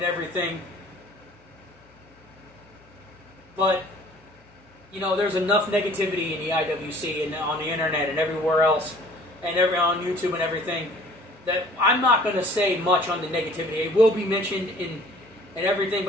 everything. But, you know, there's enough negativity in the IWC and on the internet and everywhere else and on YouTube and everything that I'm not going to say much on the negativity. It will be mentioned in everything,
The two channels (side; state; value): both; normal; correlation 0.52